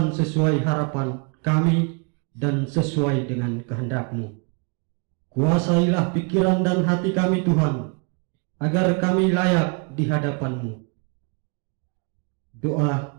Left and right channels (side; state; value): left; quieter; 35.0 dB